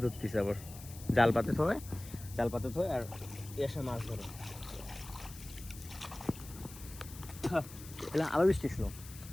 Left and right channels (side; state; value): left; noise; hiss, 16 dB below the sound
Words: ধরতেছে, আবার জাল পাতে থয় আর এর সময় মাছ ধরে। আবার বৃষ্টি ছিল,